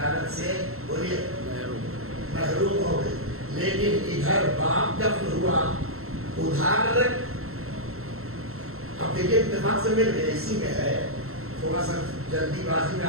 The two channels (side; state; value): left; late; 0.62 ms